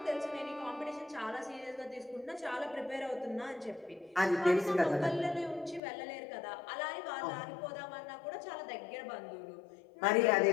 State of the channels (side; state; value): right; drops out; at 5.8 s